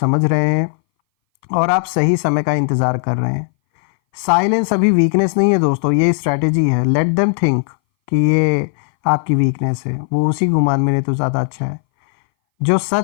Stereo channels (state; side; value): silent; right; 62 dB below the other